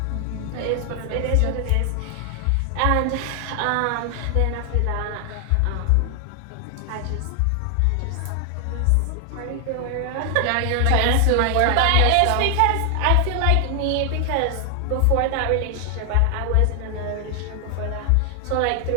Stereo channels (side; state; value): both; different; correlation 0.00